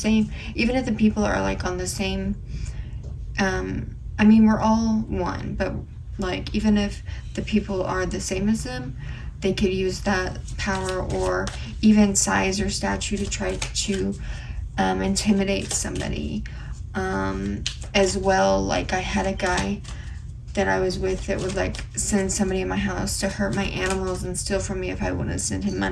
people are like on the same I mean, we're all one, but like even if the people are the same as them, they could use that power or even size or stature to try to intimidate somebody as well. Like I had a guy that I was with that would like send somebody in my house to hurt my animals and steal from me if I wouldn't send him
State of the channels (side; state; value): both; identical; correlation 1.00